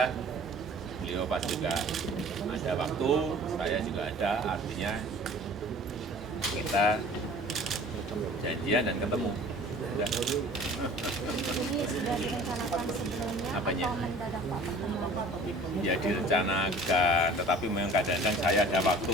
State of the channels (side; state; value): both; normal; correlation 0.47